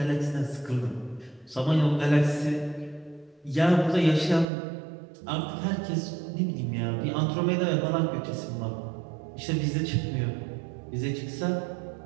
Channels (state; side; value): drops out; left; at 4.5 s